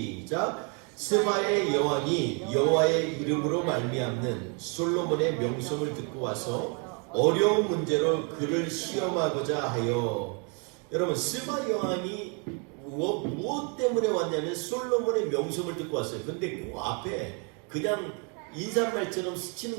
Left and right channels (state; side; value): quieter; left; 35.8 dB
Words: 스바의 여왕이 여호와의 이름으로 말미암는 솔로몬의 명성을 듣고 와서 어려운 문제로 그를 시험하고자 하여. 여러분, 스바 여왕이 무엇 때문에 왔냐면 솔로몬의 명성을 듣고 왔어요. 근데 그 앞에 그냥 인사말처럼